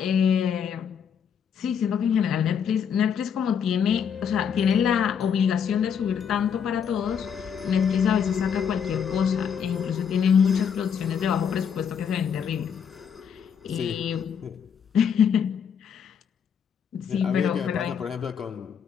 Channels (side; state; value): right; quieter; 7.5 dB